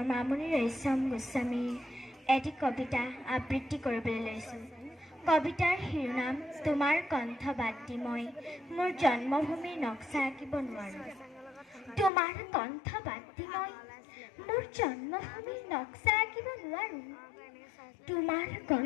মামণি ৰয়ছম গোস্বামীৰ এটি কবিতা আবৃত্তি কৰিবলৈ লৈছোঁ। কবিতাৰ শিৰোনাম তোমাৰ কণ্ঠ বাদ দি মই মোৰ জন্মভূমিৰ নক্সা আঁকিব নোৱাৰোঁ। তোমাৰ কণ্ঠ বাদ দি মই মোৰ জন্মভূমিৰ নক্সা আঁকিব নোৱাৰোঁ। তোমাৰ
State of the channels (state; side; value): drops out; right; at 12.1 s